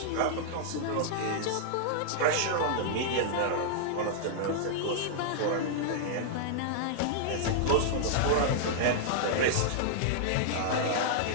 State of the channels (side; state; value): both; different; correlation -0.02